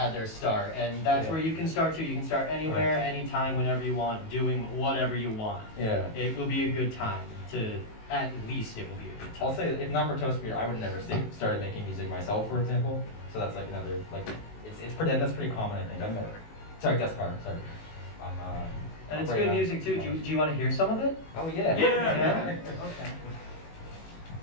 start, and that's where you can start too. You can start anywhere, anytime, whenever you want, doing whatever you want. Yeah. It will be a good time to. At least it will be a good time. I'll say, if not for TrotCon, I would never started making music myself, for example. So that's like another, like, it's pretty, that's pretty common, I think. Sorry, guest card, sorry. And it's right good now. music too. Do you want to hear some of it? Oh, yeah. Yeah. Okay.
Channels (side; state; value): right; late; 19 ms